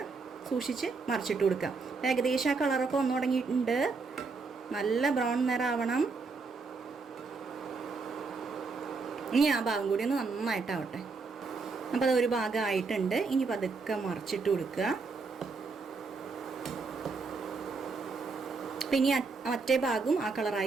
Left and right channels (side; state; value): left; quieter; 4.4 dB